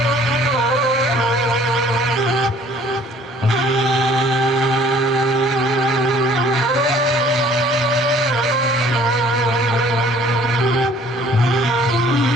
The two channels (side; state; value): both; normal; correlation 0.55